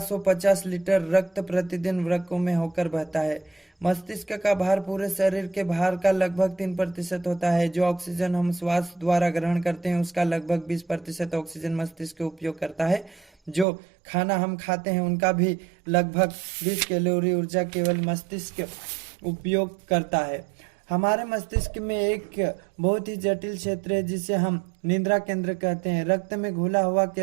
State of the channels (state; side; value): drops out; left; at 13.7 s